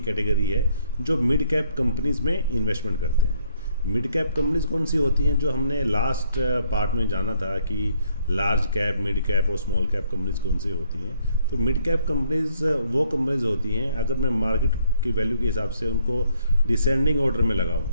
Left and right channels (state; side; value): inverted; both; correlation -0.68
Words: कैटेगरी है जो मिड कैप कंपनीज़ में इन्वेस्टमेंट करते हैं। मिड कैप कंपनीज कौन सी होती हैं, जो हमने लास्ट पार्ट में जाना था कि लार्ज कैप, मिड कैप और स्मॉल कैप कंपनीज कौन सी होती हैं। तो मिड कैप कंपनीज वो कंपनीज होती हैं, अगर मैं मार्केट की वैल्यू के हिसाब से उनको डिसेंडिंग ऑर्डर में लगाऊं